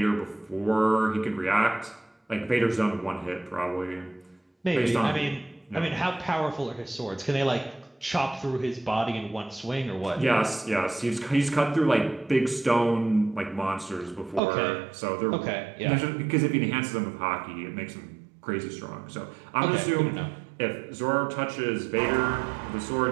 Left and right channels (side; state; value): left; drops out; at 14.4 s